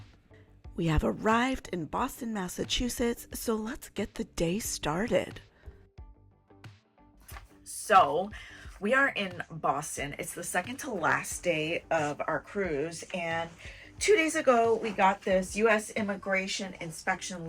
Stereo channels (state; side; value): identical; both; correlation 1.00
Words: We have arrived in Boston, Massachusetts, so let's get the day started. So we are in Boston. It's the second to last day of our cruise, and 2 days ago, we got this U.S. immigration inspection